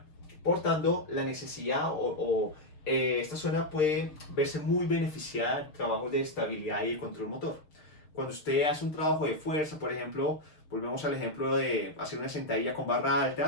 Por tanto, la necesidad esta zona puede verse muy beneficiada de trabajos de estabilidad y de control motor. Cuando usted hace un trabajo de fuerza, por ejemplo, volvemos al ejemplo de hacer una sentadilla con barra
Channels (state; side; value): late; right; 6.6 ms